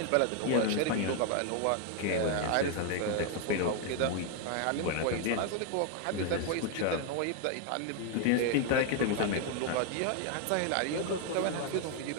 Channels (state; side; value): different; both; correlation 0.00